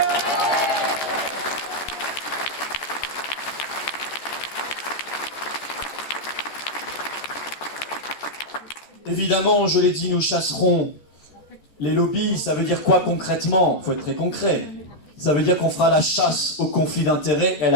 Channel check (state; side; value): late; right; 13 ms